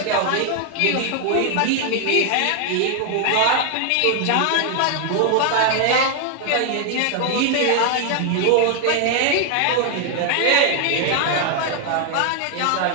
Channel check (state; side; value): different; both; correlation 0.00